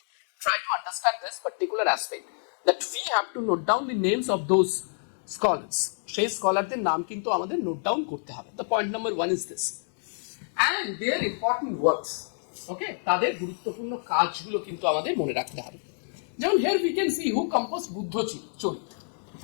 Try to understand this particular aspect, that we have to note down the names of those scholars. সেই স্কলারদের নাম কিন্তু আমাদের নোট ডাউন করতে হবে। The point number 1 is this, and their important works. Okay, তাদের গুরুত্বপূর্ণ কাজগুলো কিন্তু আমাদের মনে রাখতে হবে। যেমন here we can see who compose Buddha Charita.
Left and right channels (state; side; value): silent; right; digital silence